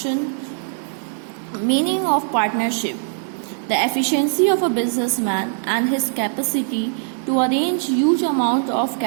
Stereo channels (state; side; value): silent; left; digital silence